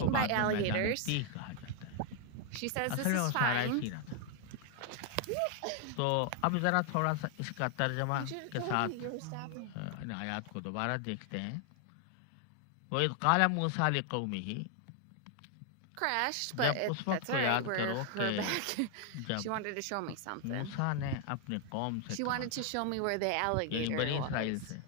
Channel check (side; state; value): both; different; correlation 0.00